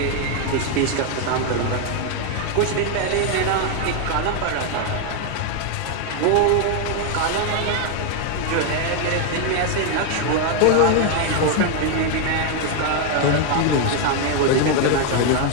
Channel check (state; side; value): different; both; correlation 0.01